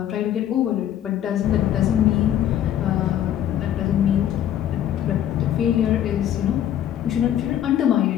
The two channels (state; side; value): quieter; right; 11.0 dB